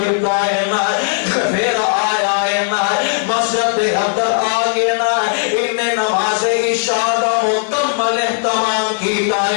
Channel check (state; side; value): silent; right; 67 dB below the other